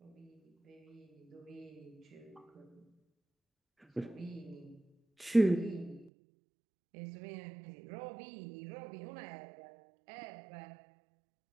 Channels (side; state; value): left; drops out; at 6.1 s